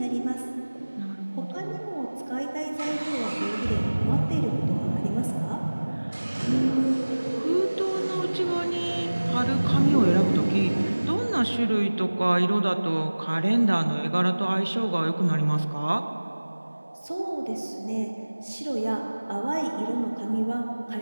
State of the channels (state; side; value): inverted; both; correlation -1.00